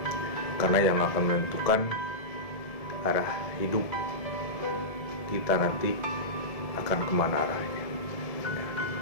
karena yang akan menentukan arah hidup kita nanti akan kemana arahnya.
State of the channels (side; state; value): right; late; 1.7 ms